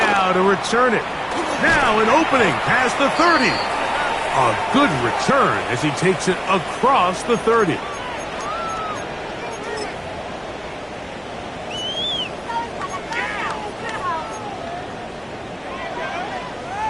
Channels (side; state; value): both; identical; correlation 1.00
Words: to return it. Now an opening past the 30. A good return as he takes it across the 30.